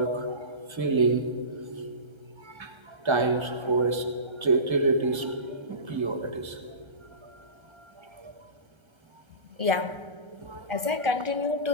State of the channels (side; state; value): left; late; 1.3 ms